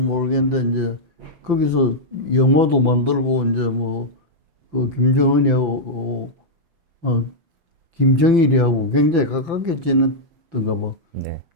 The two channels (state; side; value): late; left; 5.9 ms